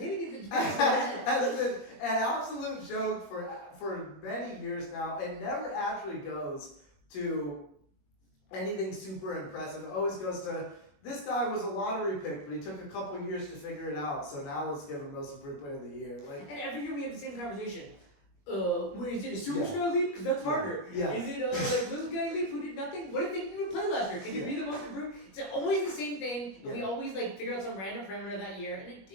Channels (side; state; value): right; late; 21 ms